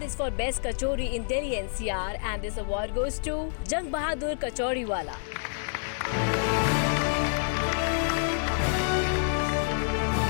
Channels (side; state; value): right; silent; 59 dB below the other